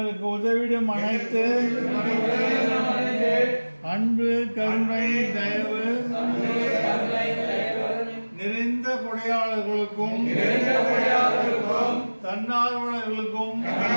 உதவிடும் அனைத்து அன்பு கருணை தயவு நிறைந்த கொடையாளர்களுக்கும் தன்னார்வலர்களுக்கும்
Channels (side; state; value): both; inverted; correlation -1.00